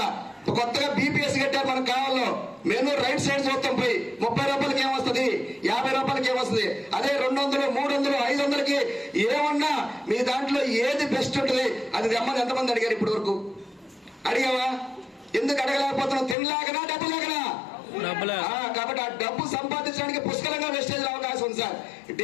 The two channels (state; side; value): drops out; right; at 16.4 s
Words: కొత్తగా బీపీఎస్ కట్టారు మనకు కావాలో. మెనూ రైట్ సైడ్ చూస్తాం. పోయి 30 రూపాయలకి ఏమొస్తుంది? 50 రూపాయలకి ఏమొస్తుంది? అదే 200, 300, 500కి ఏమన్నా మీ దాంట్లో ఏది బెస్ట్ ఉంటుంది అది తెమ్మని ఎంతమంది అడిగారు ఇప్పటి వరకు? అడిగావా? ఎందుకు అడగలేకపోతున్నాం? తినలేకనా, డబ్బు లేకనా? కాబట్టి ఆ డబ్బు సంపాదించడానికి పుష్కలంగా వెస్టేజ్ అవకాశం ఉంది సార్.